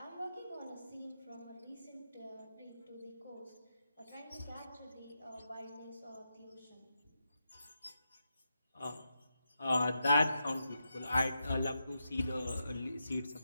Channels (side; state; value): both; inverted; correlation -0.87